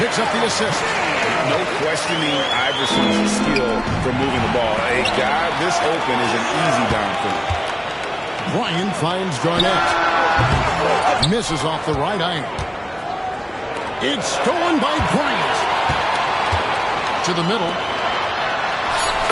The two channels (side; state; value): both; identical; correlation 1.00